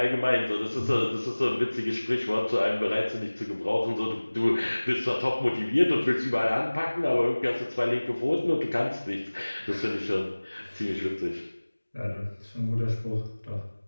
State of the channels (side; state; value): both; inverted; correlation -1.00